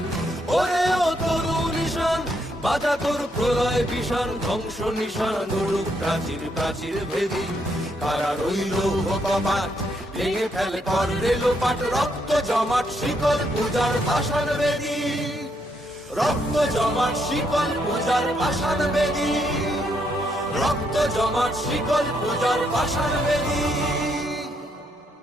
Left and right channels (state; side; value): normal; both; correlation 0.75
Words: ওরে ও তরু নিশান বাজা তোর প্রলয় বিষাণ ধ্বংস নিশান উড়ুক প্রাচীর প্রাচীর ভেদি কারা রইল কপাট ভেঙে ফেল কর রেলোপাট রক্ত জমাট শিকল পূজার পাষাণ বেদী রক্ত জমাট শিকল পূজার পাষাণ বেদী রক্ত জমাট শিকল পূজার পাষাণ বেদী